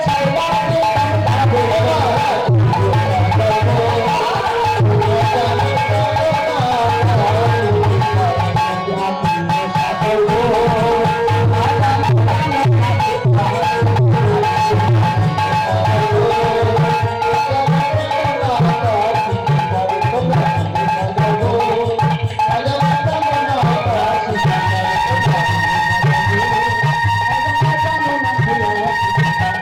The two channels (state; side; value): identical; both; correlation 1.00